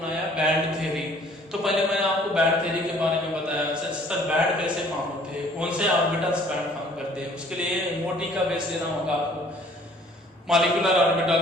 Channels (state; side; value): normal; both; correlation 0.56